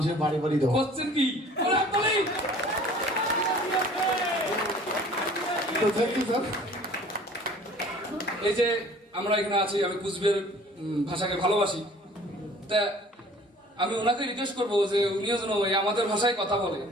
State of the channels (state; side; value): normal; both; correlation 0.50